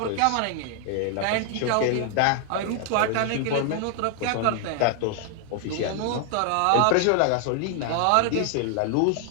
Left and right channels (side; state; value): both; different; correlation 0.00